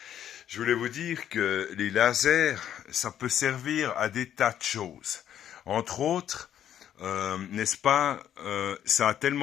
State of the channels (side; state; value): right; quieter; 10.3 dB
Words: Je voulais vous dire que les lasers, ça peut servir à des tas de choses. Entre autres, n'est-ce pas, ça a